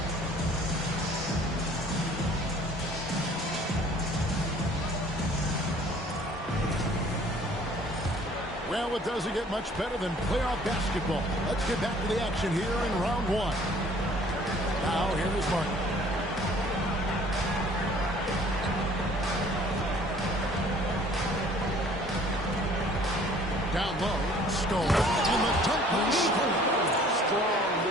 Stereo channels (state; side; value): normal; both; correlation 0.54